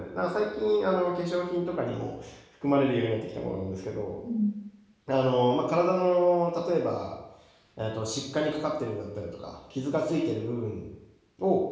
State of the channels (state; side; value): identical; both; correlation 1.00